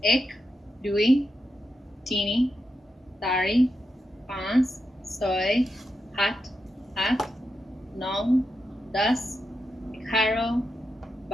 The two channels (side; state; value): both; normal; correlation 0.87